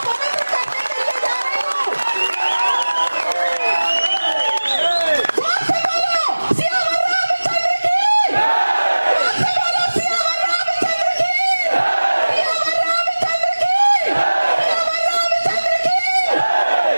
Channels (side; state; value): both; inverted; correlation -1.00